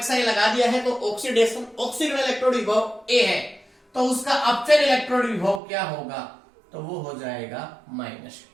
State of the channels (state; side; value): drops out; left; at 5.6 s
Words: लगा दिया है तो ऑक्सीडेशन, ऑक्सीकरण इलेक्ट्रोड विभव A है, तो उसका अपचयन इलेक्ट्रोड विभव क्या होगा, तो वो हो जाएगा माइनस।